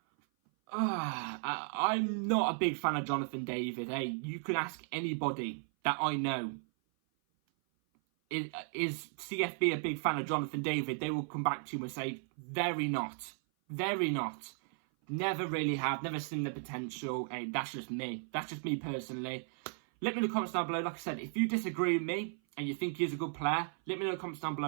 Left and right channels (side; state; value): left; silent; 54 dB below the other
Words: I'm not a big fan of Jonathan David. Hey, you can ask anybody that I know. Is CFB a big fan of Jonathan David? They will come back to you and say, very not. Very not. Never really have. Never seen the potential. Hey, that's just me. That's just me personally. Let me know in the comments down below. Like I said, if you disagree with me and you think he's a good player, let me know in the comments down